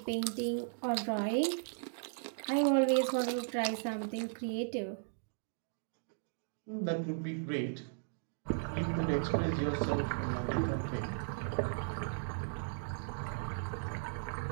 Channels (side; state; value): left; silent; digital silence